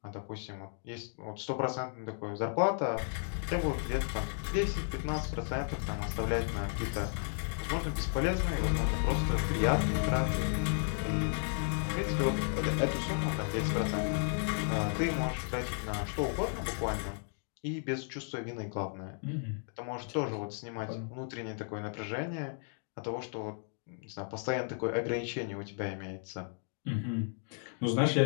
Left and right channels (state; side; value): silent; right; 55 dB below the other